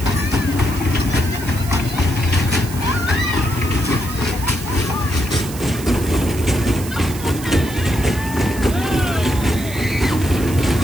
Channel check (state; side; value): noise; right; hiss, 13 dB below the sound